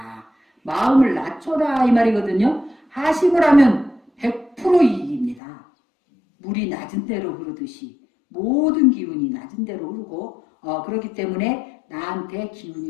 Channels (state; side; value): drops out; right; at 5.4 s